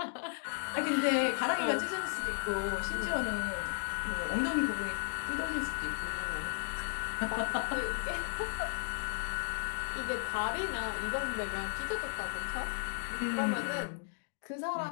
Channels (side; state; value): right; silent; digital silence